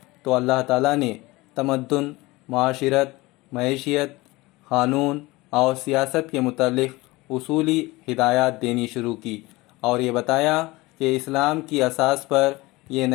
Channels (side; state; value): right; quieter; 21.2 dB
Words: تو اللہ تعالیٰ نے تمدن، معاشرت، معیشت، قانون اور سیاست کے متعلق اصولی ہدایات دینی شروع کی اور یہ بتایا کہ اسلام کی اساس پر یہ